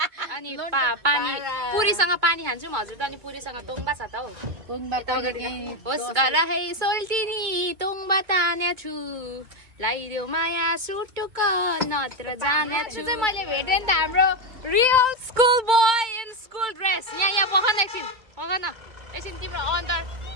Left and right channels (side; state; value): left; late; 2.2 ms